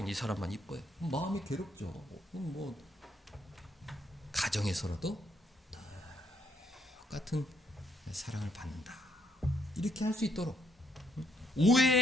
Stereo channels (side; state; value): both; normal; correlation 0.73